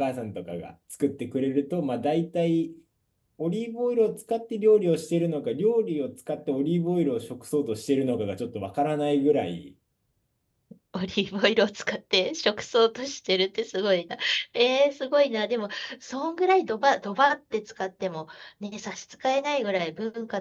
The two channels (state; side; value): identical; both; correlation 1.00